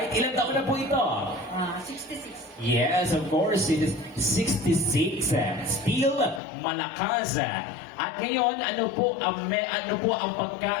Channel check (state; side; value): drops out; right; at 6.4 s